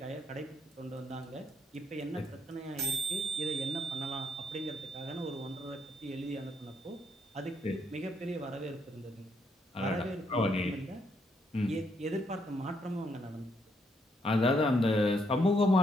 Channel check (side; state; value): both; normal; correlation 0.74